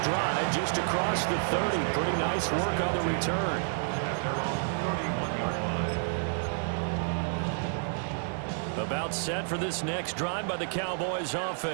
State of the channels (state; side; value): silent; left; digital silence